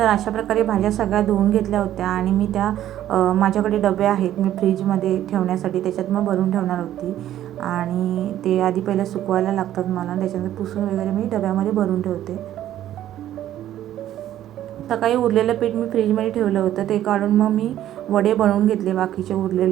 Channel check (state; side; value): quieter; left; 12.3 dB